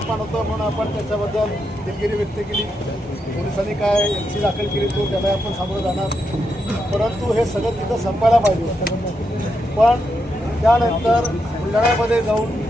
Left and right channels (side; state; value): both; normal; correlation 0.83